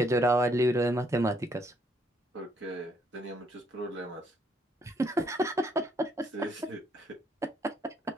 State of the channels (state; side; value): normal; both; correlation 0.70